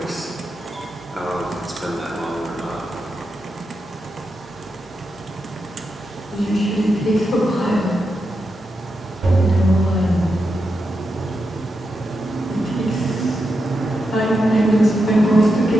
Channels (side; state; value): both; normal; correlation 0.86